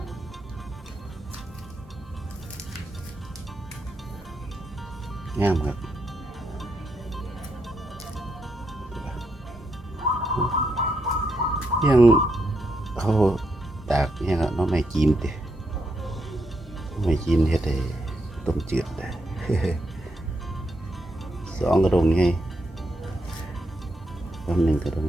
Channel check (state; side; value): normal; both; correlation 0.80